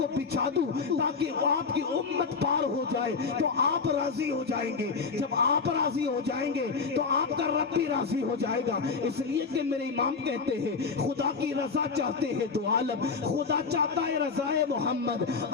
بچھا دوں تاکہ آپ کی امت پار ہو جائے، تو آپ راضی ہو جائیں گے، جب آپ راضی ہو جائیں گے تو آپ کا رب بھی راضی ہو جائے گا، اس لیے کہ میرے امام کہتے ہیں خدا کی رضا چاہتے ہیں دو عالم، خدا چاہتا ہے رضائے محمد،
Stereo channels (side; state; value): right; quieter; 5.0 dB